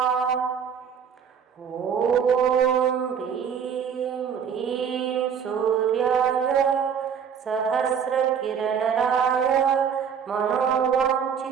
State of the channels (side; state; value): left; quieter; 7.4 dB